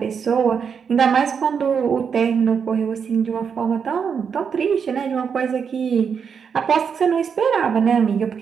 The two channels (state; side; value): quieter; left; 6.6 dB